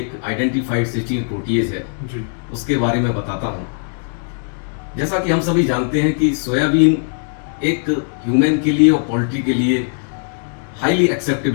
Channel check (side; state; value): right; silent; digital silence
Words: आइडेंटिफाइड सिस्टीन प्रोटीएज है जी, उसके बारे में बताता हूँ। जैसा कि हम सभी जानते हैं कि सोयाबीन एक ह्यूमन के लिए और पोल्ट्री के लिए हाईली